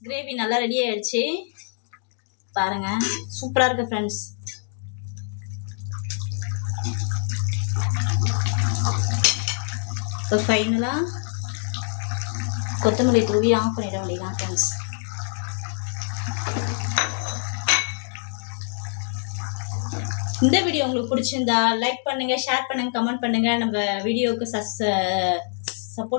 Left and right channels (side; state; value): right; silent; digital silence